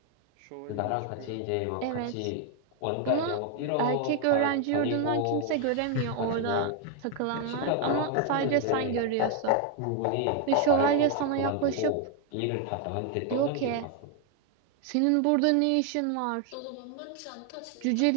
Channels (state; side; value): different; both; correlation 0.01